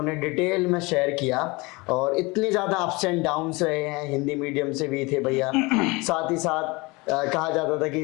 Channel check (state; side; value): quieter; right; 24.9 dB